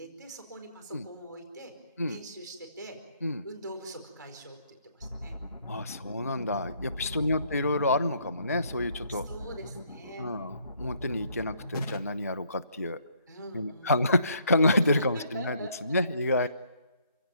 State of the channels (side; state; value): both; inverted; correlation -0.68